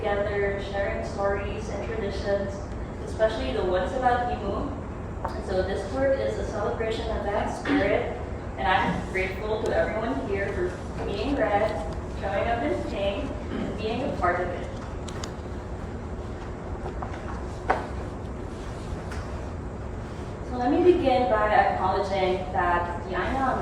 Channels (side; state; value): both; identical; correlation 1.00